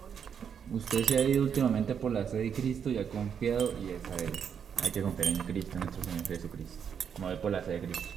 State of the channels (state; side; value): quieter; left; 7.5 dB